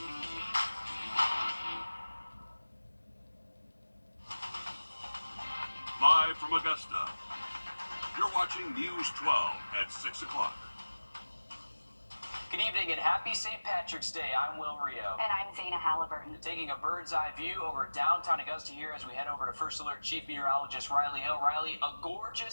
Live from Augusta, you're watching News 12 at 6 o'clock. Good evening and happy St. Patrick's Day. I'm Wrdw. And I'm Zana Halliburton. Taking a bird's eye view over downtown Augusta here as we head over to First Alert Chief Meteorologist Riley Hill. Riley, a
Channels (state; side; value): inverted; both; correlation -1.00